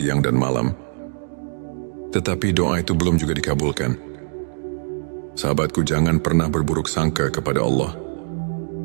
dan malam, tetapi doa itu belum juga dikabulkan? Sahabatku, jangan pernah berburuk sangka kepada Allah.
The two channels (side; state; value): left; silent; digital silence